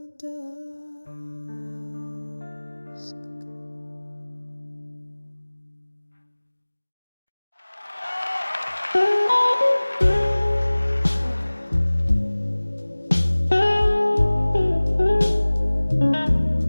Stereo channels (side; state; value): both; inverted; correlation -1.00